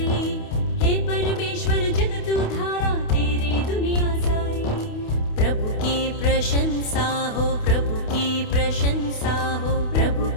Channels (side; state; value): right; late; 28 ms